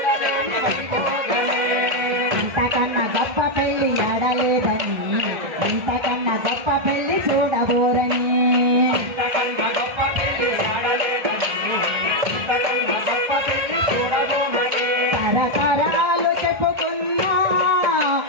ఇంతకన్నా గొప్ప పెళ్లి ఎడలేదని ఇంతకన్నా గొప్ప పెళ్లి చూడబోరని తరతరాలు చెప్పుకున్నా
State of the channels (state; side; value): late; left; 1.3 ms